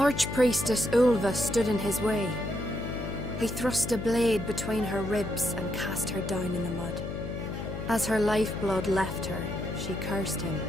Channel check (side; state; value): left; noise; hum, 6 dB below the sound